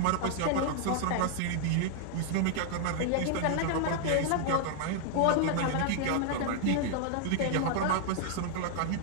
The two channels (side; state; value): both; different; correlation 0.00